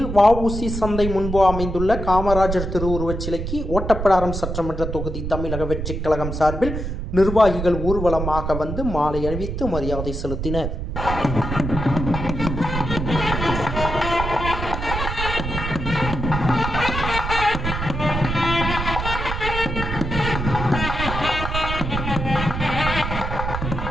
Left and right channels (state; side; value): noise; right; rumble, 4 dB below the sound